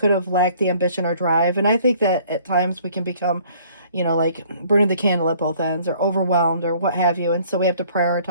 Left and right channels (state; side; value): inverted; both; correlation -0.57